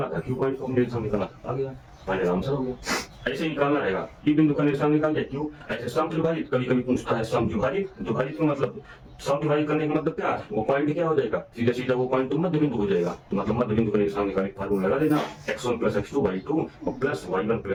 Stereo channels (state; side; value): identical; both; correlation 1.00